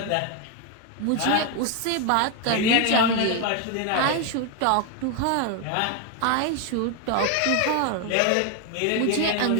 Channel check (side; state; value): both; different; correlation 0.01